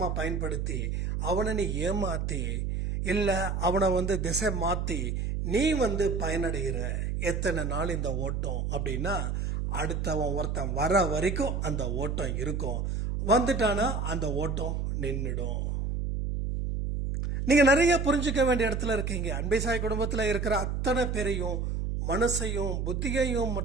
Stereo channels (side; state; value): right; noise; hum, 1 dB below the sound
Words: பயன்படுத்தி அவனை நீ ஏமாற்றி இல்லை அவனை திசை மாற்றி நீ பயனடைகிற எத்தனை நாள் இந்த ஓட்டம் அப்படின்னா அடுத்தவன் ஒருத்தன் வர வரைக்கும் அந்த ஓட்டம் இருக்கும். வந்துட்டானா அந்த ஓட்டம் நின்றுடும். நீங்க நிறைய புரிஞ்சுக்க வேண்டிய இடத்துல இருக்கீங்க. அன்பை சாய் குடும்பத்தில் இருக்கிற அத்தனை பேரையும் மனசையும் புத்தியையும்